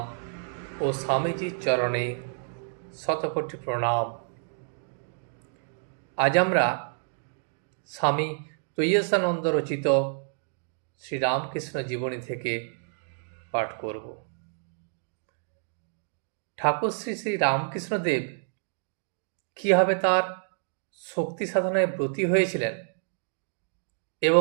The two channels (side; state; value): left; silent; digital silence